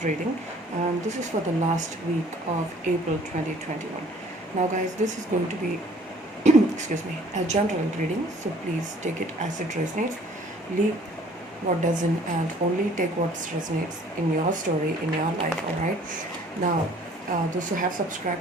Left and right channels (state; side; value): normal; both; correlation 0.55